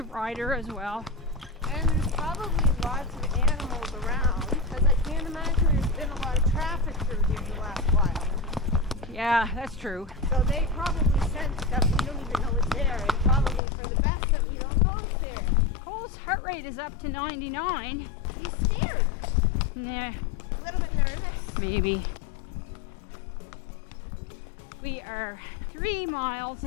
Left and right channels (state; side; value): drops out; right; at 13.6 s